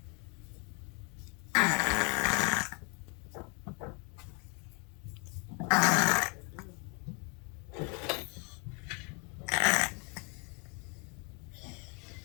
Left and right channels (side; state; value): right; quieter; 34.4 dB